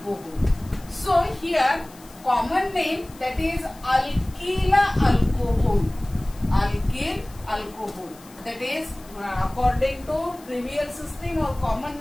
So here common name, that is alkyl alcohol, alkyl alcohol, that is according to trivial system or common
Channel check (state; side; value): noise; left; hiss, 23 dB below the sound